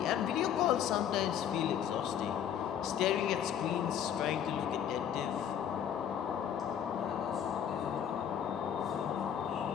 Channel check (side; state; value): right; quieter; 9.2 dB